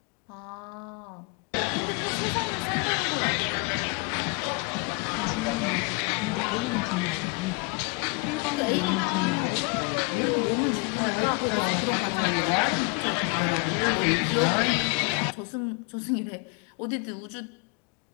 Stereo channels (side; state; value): right; quieter; 31.9 dB